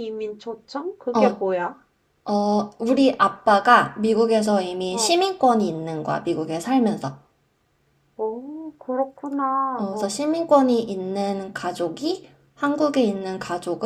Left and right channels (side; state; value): both; identical; correlation 1.00